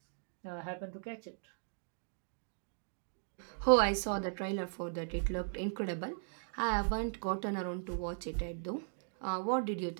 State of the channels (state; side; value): silent; left; digital silence